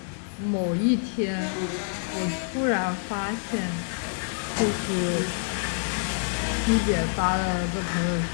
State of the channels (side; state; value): right; silent; digital silence